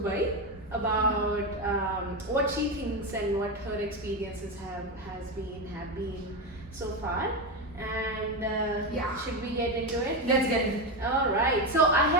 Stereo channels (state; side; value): normal; both; correlation 0.13